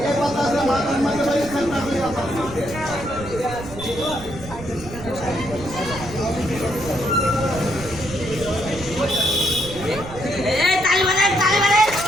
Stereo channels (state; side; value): noise; right; rumble, 13 dB below the sound